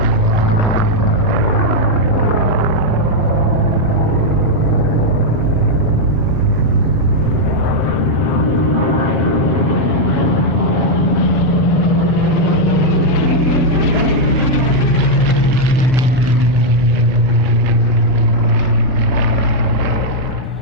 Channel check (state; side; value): normal; both; correlation -0.02